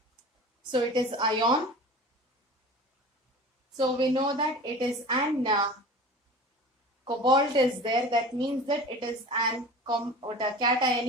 So it is ion. So we know that it is an cobalt is there. That means that it is an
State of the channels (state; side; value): normal; both; correlation 0.38